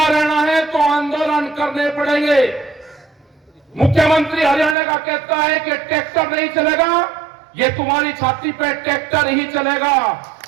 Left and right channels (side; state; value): left; drops out; at 4.8 s